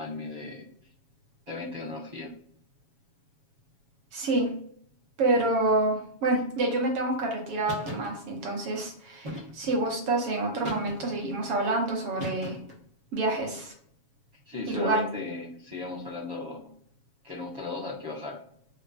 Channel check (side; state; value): left; late; 7.2 ms